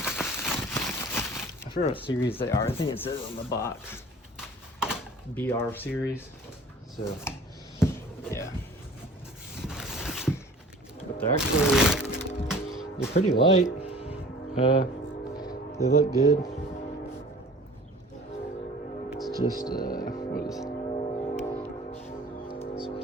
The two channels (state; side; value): normal; both; correlation 0.46